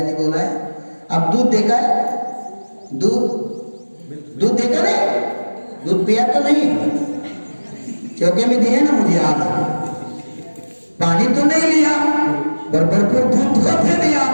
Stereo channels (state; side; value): inverted; both; correlation -1.00